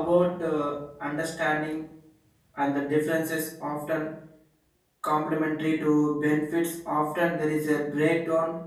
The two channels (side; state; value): both; identical; correlation 1.00